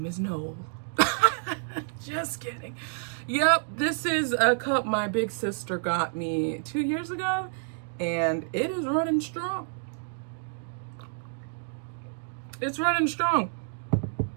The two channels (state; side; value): silent; left; digital silence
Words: is Noel. Just kidding. Yep, this is a cup my big sister got me 2 years ago, and it is running strong. It's running strong.